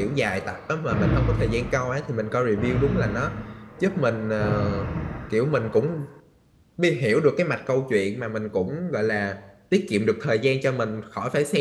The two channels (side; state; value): both; identical; correlation 1.00